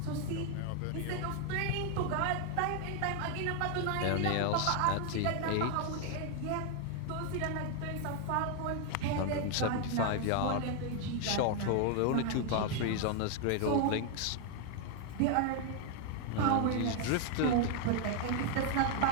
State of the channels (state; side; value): different; both; correlation 0.00